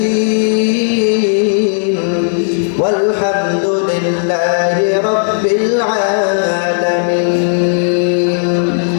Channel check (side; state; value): right; silent; digital silence